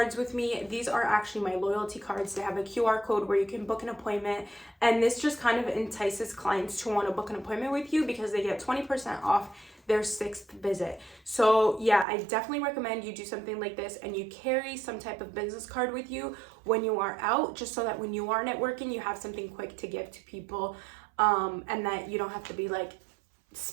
with me. These are actually my loyalty cards. They have a QR code where you can book an appointment. And this just kind of entices clients to want to book an appointment with you because they get 20% off their 6th visit. So yeah, I definitely recommend you do something like this and you carry some type of business card with you when you are out, just so that when you are networking, you have something quick to give to people. And that you don't have to be like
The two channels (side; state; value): left; drops out; at 12.1 s